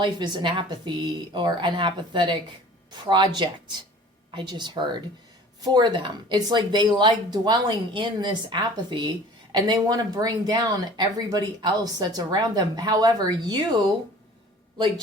is an apathy or an apathetic project, I just heard, for them. It's like they like dwelling in this apathy, and they want to bring down everybody else that's around them. However, you, like,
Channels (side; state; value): both; normal; correlation 0.46